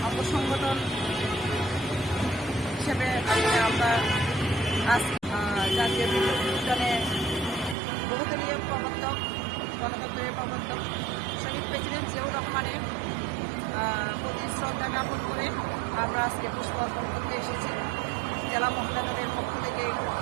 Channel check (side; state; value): left; drops out; at 7.8 s